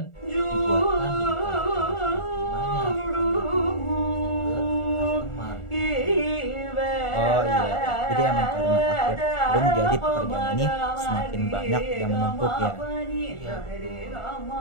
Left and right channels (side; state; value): right; late; 1.4 ms